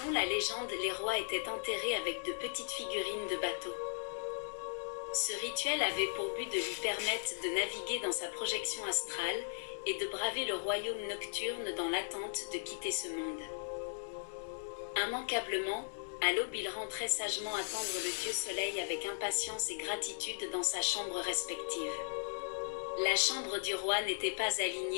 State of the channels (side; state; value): right; silent; digital silence